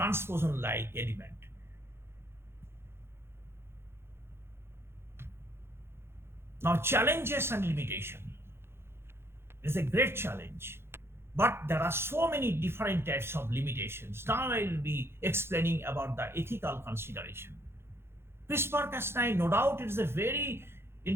element. Now, challenges and limitation. It's a great challenge, but there are so many different types of limitations. Now I will be explaining about the ethical consideration. CRISPR-Cas9, no doubt, it is a very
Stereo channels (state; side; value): late; left; 0.12 ms